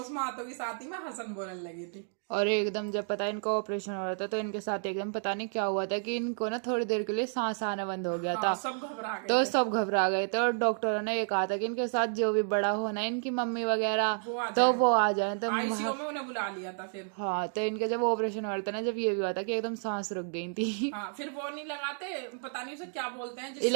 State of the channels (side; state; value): left; silent; 57 dB below the other